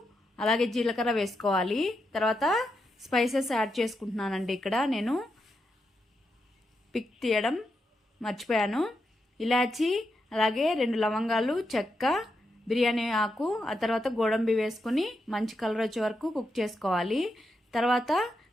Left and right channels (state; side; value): normal; both; correlation 0.84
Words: అలాగే జీలకర్ర వేసుకోవాలి. తర్వాత స్పైసెస్ యాడ్ చేసుకుంటున్నానండి. ఇక్కడ నేను పిక్ తీయడం మర్చిపోయాను. ఇలాచి, అలాగే 2 లవంగాలు, చెక్క, బిర్యానీ ఆకు, ఆ తర్వాత గోడంబి వేసుకుని మంచి కలర్ వచ్చే వరకు కుక్ చేసుకోవాలి. తర్వాత